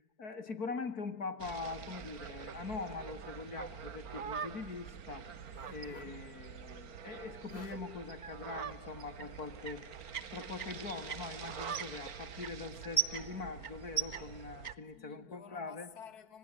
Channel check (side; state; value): right; late; 4.4 ms